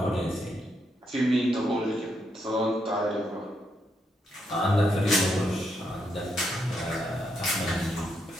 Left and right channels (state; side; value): normal; both; correlation 0.79